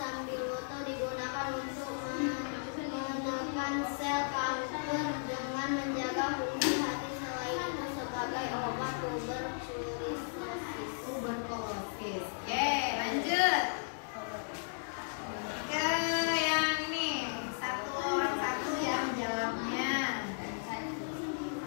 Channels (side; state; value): right; silent; digital silence